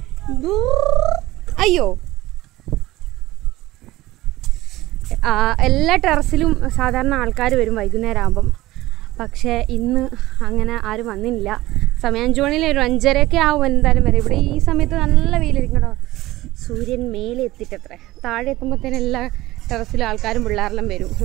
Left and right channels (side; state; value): left; quieter; 17.5 dB